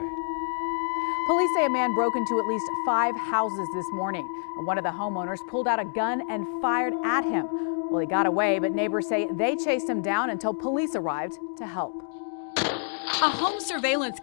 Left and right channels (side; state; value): right; silent; digital silence